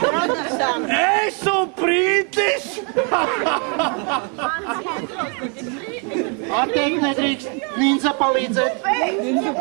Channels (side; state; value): left; quieter; 37.2 dB